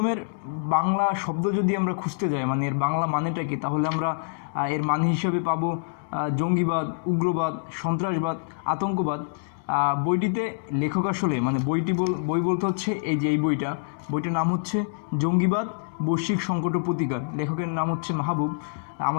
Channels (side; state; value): right; silent; digital silence